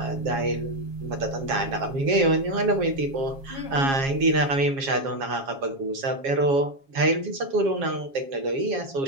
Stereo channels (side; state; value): left; late; 7.3 ms